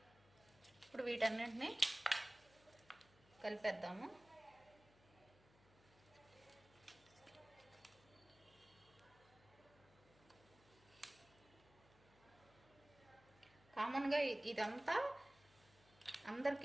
ఇప్పుడు వీటన్నింటినీ కలిపేద్దాము. కామన్గా ఇదంతా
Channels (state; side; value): noise; left; hum, 26 dB below the sound